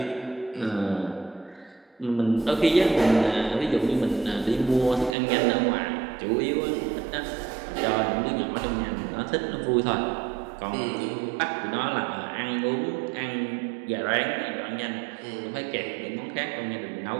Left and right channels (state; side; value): drops out; left; at 5.2 s